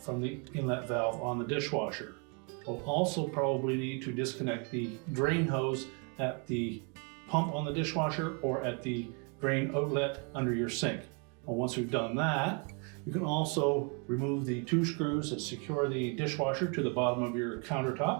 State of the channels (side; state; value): left; quieter; 36.5 dB